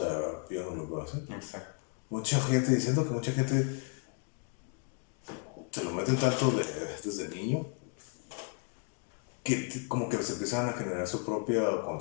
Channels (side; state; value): right; quieter; 39.8 dB